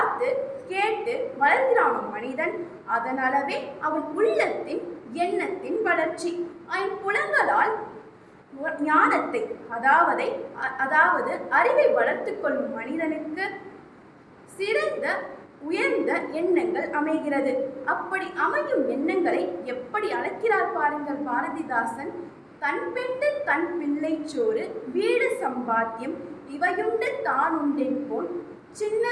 கேட்டு வளர்கிறானோ மனிதன், அதனாலவே அவன் உள்ளத்தின் எண்ணத்தின் வளர்ச்சி. ஐம்புலங்களால் ஞானத்தை அதாவது அறிவை வளர்த்து கொள்ளும் மனிதனுக்கு சிறந்த உயர்ந்த எண்ணங்கள் அமைகிறது. அப்படி அமையும் எண்ணங்களை எப்படி அழைக்கிறார் பாருங்கள் பாரதிதாசன். தன் பெண்டு தன் பிள்ளை சோறு, வீடு சம்பாத்தியம், இவையுண்டு தான் உண்டென் போல்,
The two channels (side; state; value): both; identical; correlation 1.00